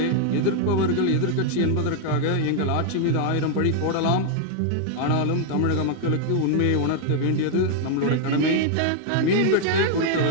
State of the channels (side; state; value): both; different; correlation 0.00